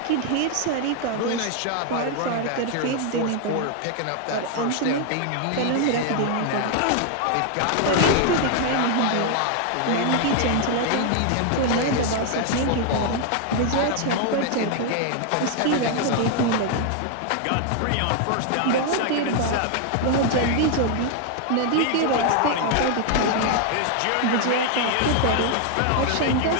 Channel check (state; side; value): different; both; correlation 0.00